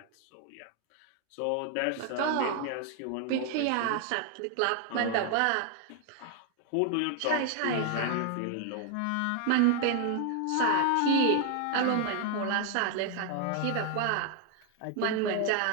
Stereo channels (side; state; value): both; different; correlation 0.00